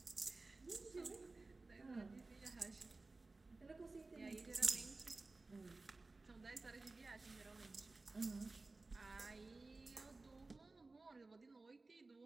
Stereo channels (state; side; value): quieter; left; 3.5 dB